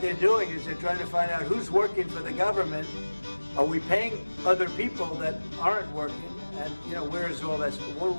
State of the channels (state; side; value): inverted; both; correlation -1.00